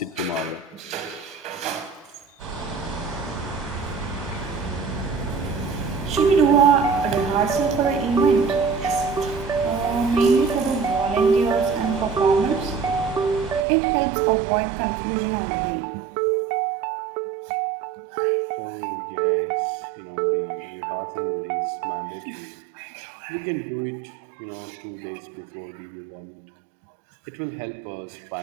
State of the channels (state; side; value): drops out; left; at 13.7 s